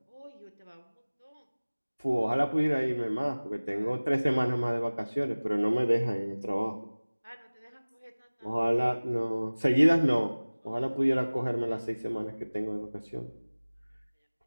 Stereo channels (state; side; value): inverted; both; correlation -1.00